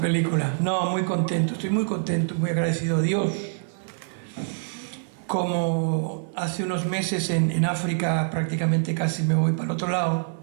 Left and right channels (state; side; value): silent; left; 62 dB below the other